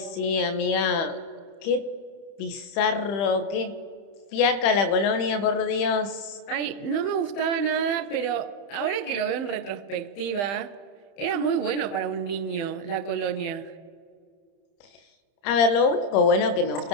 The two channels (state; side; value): late; right; 30 ms